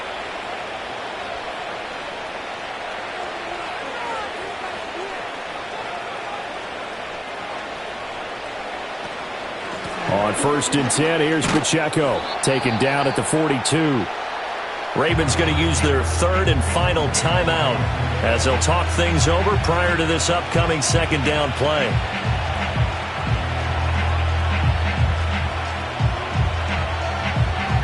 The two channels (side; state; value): both; identical; correlation 1.00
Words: On 1st and 10, here's Pacheco. Taken down at the 42. Ravens going to use their 3rd and final timeout as they'll talk things over prior to this upcoming 2nd down play.